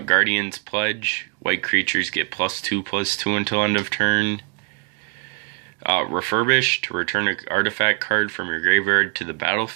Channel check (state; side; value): quieter; left; 39.6 dB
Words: Pledge, white creatures get +2/+2 until end of turn. Refurbish, to return an artifact card from your graveyard to the